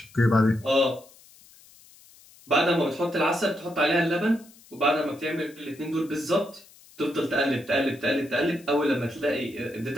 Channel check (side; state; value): left; noise; hiss, 25 dB below the sound